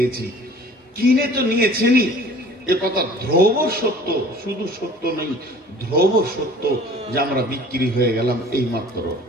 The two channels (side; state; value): both; normal; correlation 0.48